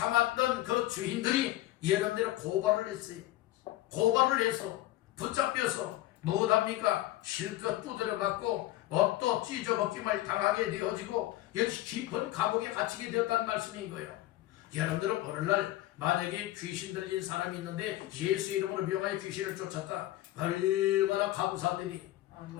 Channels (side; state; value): right; quieter; 15.8 dB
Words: 그 주인들이 여러분들의 고발을 했어요. 고발을 해서 붙잡혀서 무엇합니까? 실컷 두드려맞고 옷도 찢어벗김을 당하게 되어지고 역시 깊은 감옥에 갇히게 되었다는 말씀인 거예요. 여러분들은 오늘날 만약에 귀신 들린 사람이 있는데 예수 이름으로 명하여 귀신을 쫓았다. 얼마나 감사한 일이,